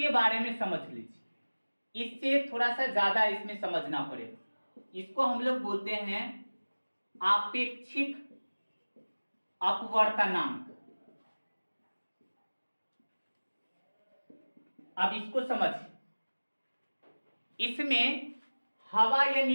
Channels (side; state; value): both; inverted; correlation -1.00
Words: बारे में समझ लीजिए, इससे थोड़ा सा ज्यादा इसमें समझना पड़ेगा। इसको हम लोग बोलते हैं आपेक्षिक अपवर्तनांक। अब इसको समझिए, इसमें हवा या